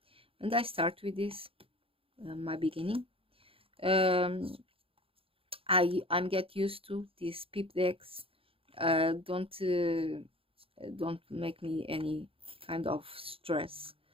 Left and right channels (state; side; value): late; left; 0.27 ms